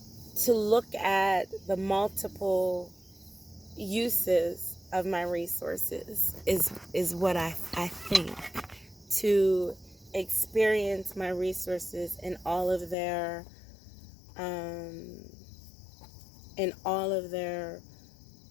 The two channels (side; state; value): right; drops out; at 13.0 s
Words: to look at the multiple uses of my resources is what I think. To experience my resources in all of their